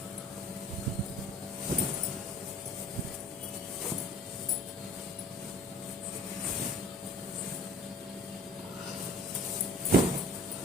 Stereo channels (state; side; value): normal; both; correlation 0.48